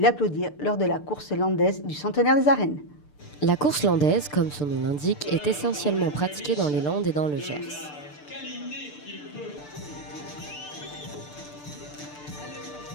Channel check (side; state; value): right; late; 6.8 ms